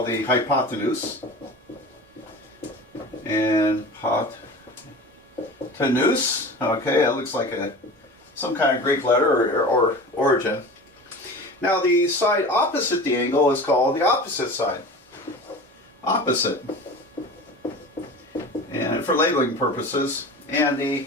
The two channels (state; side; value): normal; both; correlation 0.35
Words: the hypotenuse. And hypotenuse, okay, that looks like some kind of Greek letter or origin. Now the side opposite the angle is called the opposite side. Opposite. And for labeling purposes. And the